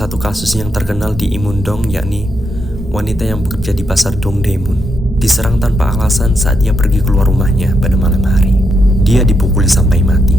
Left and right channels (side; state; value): both; normal; correlation 0.82